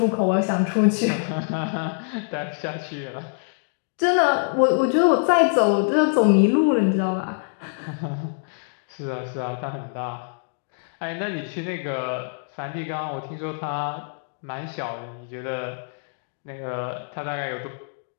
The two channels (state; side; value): silent; right; digital silence